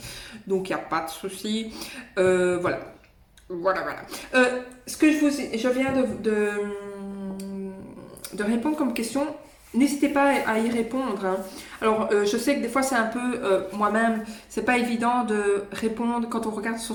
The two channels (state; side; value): identical; both; correlation 1.00